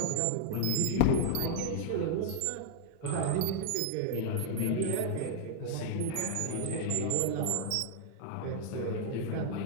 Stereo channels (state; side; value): different; both; correlation 0.00